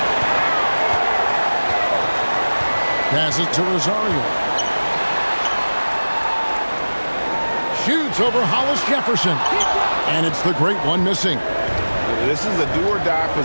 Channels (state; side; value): inverted; both; correlation -1.00